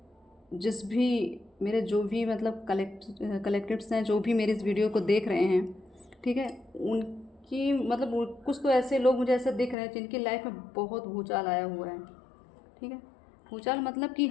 जिस भी मेरे जो भी मतलब कलेक्टिव्स हैं, जो भी मेरी इस वीडियो को देख रहे हैं, ठीक है, उनकी मतलब कुछ तो ऐसे लोग मुझे ऐसे दिख रहे हैं जिनकी लाइफ में बहुत भूचाल आया हुआ है। ठीक है, भूचाल मतलब कि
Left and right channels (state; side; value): drops out; right; at 9.8 s